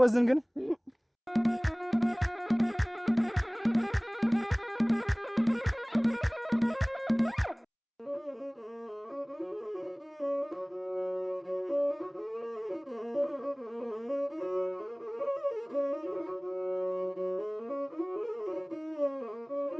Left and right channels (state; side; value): identical; both; correlation 1.00